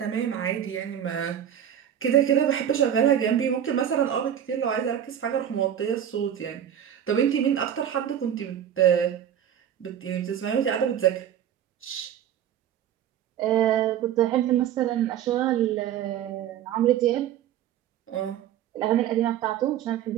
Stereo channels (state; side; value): quieter; left; 10.0 dB